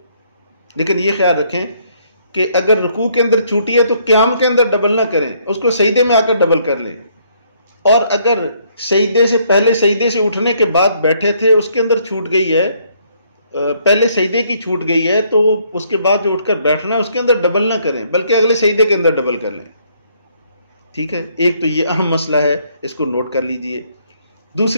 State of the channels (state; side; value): inverted; both; correlation -0.68